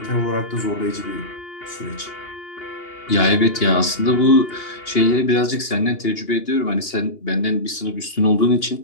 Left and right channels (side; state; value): right; late; 2.8 ms